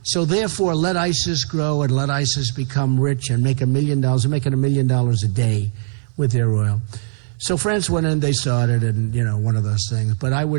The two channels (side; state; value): left; silent; digital silence